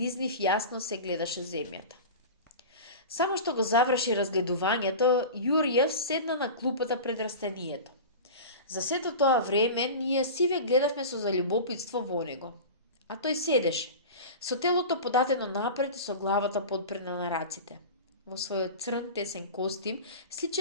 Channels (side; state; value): both; inverted; correlation -0.31